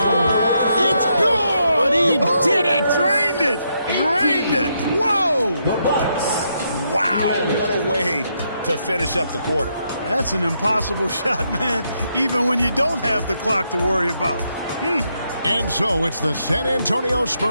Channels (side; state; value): both; inverted; correlation -0.78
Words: It's good! He did it! Drained it! Drained it! Whoa! The Bucks. Wow, what a way to finish up the quarter. That's an impossible shot, man, even when you don't have the clock to worry about. And so it's the San Antonio